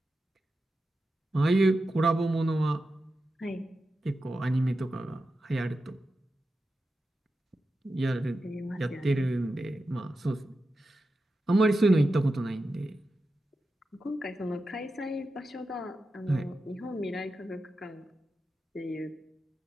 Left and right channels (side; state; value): both; normal; correlation 0.91